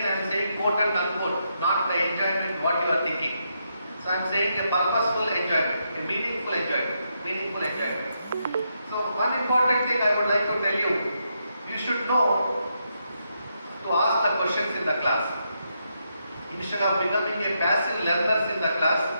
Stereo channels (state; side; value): inverted; both; correlation -0.81